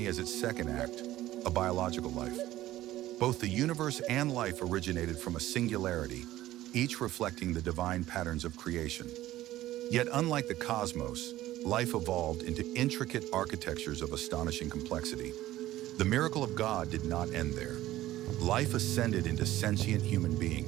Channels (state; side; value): quieter; left; 15.0 dB